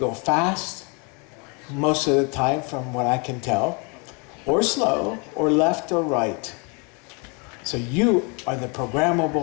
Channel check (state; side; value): quieter; right; 32.9 dB